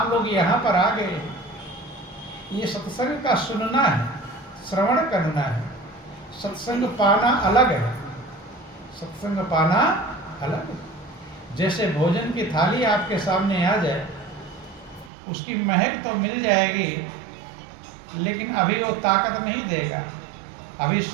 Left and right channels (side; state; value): left; drops out; at 15.1 s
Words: लोग यहाँ पर आ गए, ये सत्संग का सुनना है, श्रवण करना है। सत्संग पाना अलग है, सत्संग पाना अलग है। जैसे भोजन की थाली आपके सामने आ जाए, उसकी महक तो मिल जाएगी लेकिन अभी वो ताकत नहीं देगा, अभी